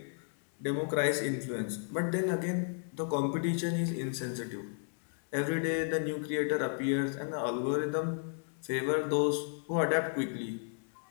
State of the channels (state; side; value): silent; right; 55 dB below the other